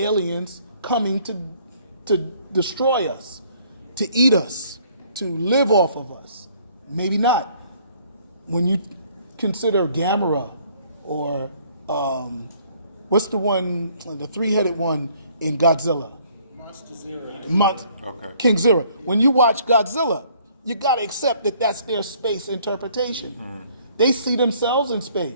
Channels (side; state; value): both; inverted; correlation -0.61